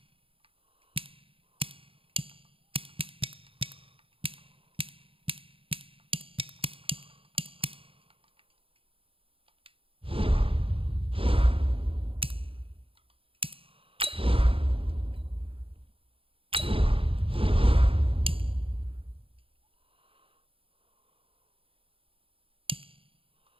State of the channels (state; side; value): late; left; 0.27 ms